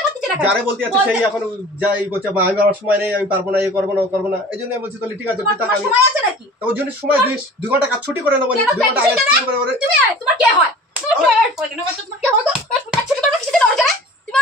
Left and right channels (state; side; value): normal; both; correlation 0.42